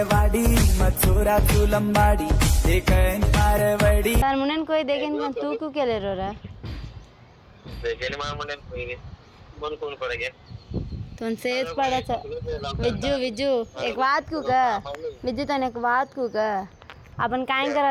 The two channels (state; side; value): identical; both; correlation 1.00